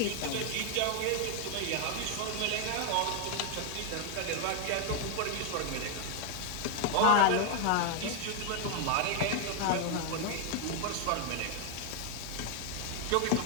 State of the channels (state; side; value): different; both; correlation 0.00